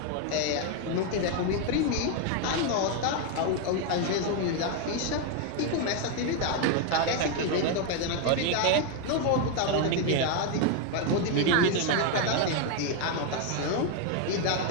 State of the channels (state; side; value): different; both; correlation 0.01